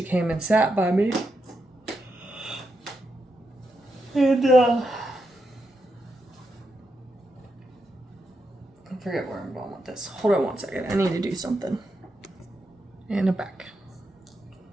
came and sat by me. And, I forget where I'm going with this. Hold on one second. I need to do something. And I'm back.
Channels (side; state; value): both; normal; correlation 0.84